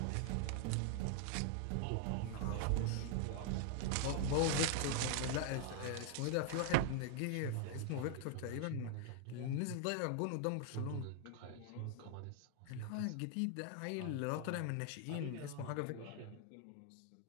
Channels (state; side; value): different; both; correlation 0.00